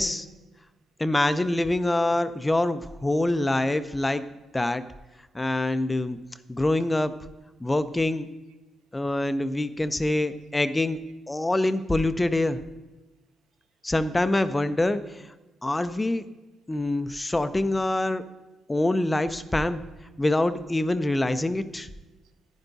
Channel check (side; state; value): both; normal; correlation 0.96